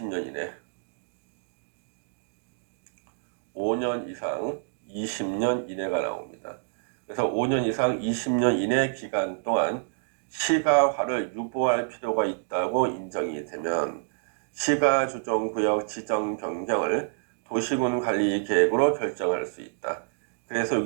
이내 5년 이상 20년 이내가 나옵니다. 그래서 5년 이상 20년 이내 기간 동안 시가화를 유보할 필요가 있다고 인정이 되면 시가조정구역 지정 변경을 도시군 관리 계획으로 결정할 수 있다. 그래서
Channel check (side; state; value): left; silent; digital silence